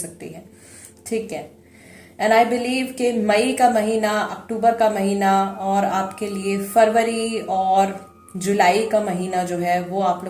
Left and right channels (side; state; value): both; identical; correlation 1.00